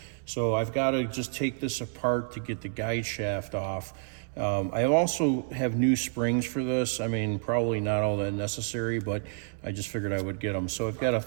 So I've got to just take this apart to get the guide shaft off. I also have new springs for this. I mean, probably not all that necessary, but I just figured I would get them. So I've got a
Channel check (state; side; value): silent; left; 58 dB below the other